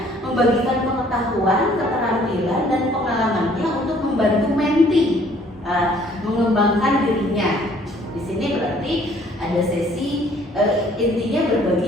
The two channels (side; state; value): both; normal; correlation 0.59